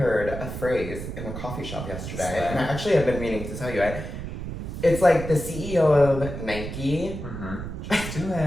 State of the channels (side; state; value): right; noise; rumble, 7 dB below the sound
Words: a phrase in a coffee shop yesterday, and I actually have been meaning to tell you it. It's like the CEO of Nike. Mm-hmm. Just do